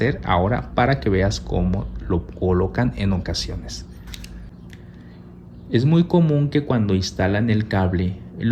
ahora para que veas cómo lo colocan en ocasiones. Es muy común que cuando instalan el cable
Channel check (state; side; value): identical; both; correlation 1.00